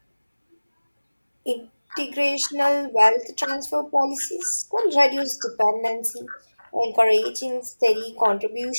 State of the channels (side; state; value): both; inverted; correlation -1.00